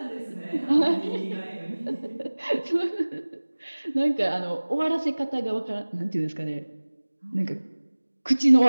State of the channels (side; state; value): both; inverted; correlation -1.00